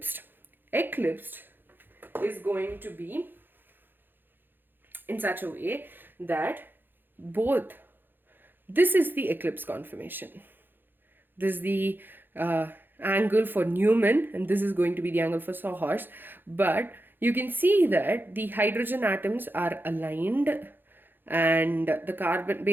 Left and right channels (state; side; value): late; left; 0.096 ms